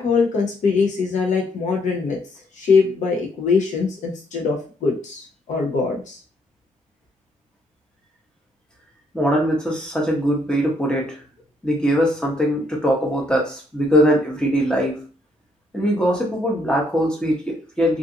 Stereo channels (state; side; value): normal; both; correlation 0.71